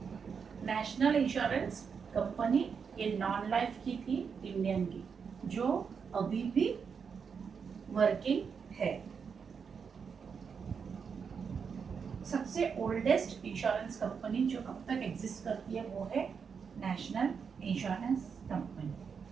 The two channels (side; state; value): left; quieter; 6.2 dB